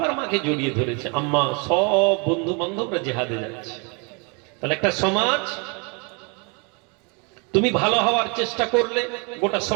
মাকে জড়িয়ে ধরেছে, আম্মা সব বন্ধু বান্ধবরা জিহাদে যাচ্ছে। তাহলে একটা সমাজ, তুমি ভালো হওয়ার চেষ্টা করলে গোটা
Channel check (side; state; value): left; quieter; 33.3 dB